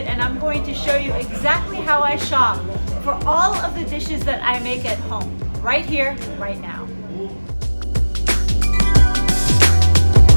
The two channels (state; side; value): inverted; both; correlation -1.00